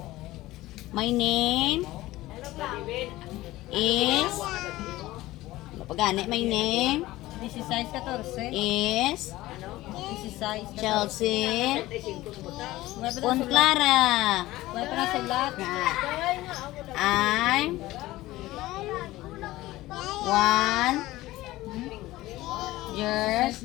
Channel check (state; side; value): quieter; right; 17.4 dB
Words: My name is... Pagani, my name 16-14. is 16. Chelsea Clara. May pa na sulat. I'm 1 years